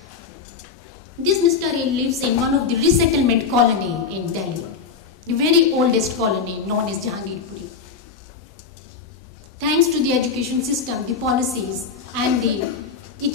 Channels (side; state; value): right; quieter; 5.6 dB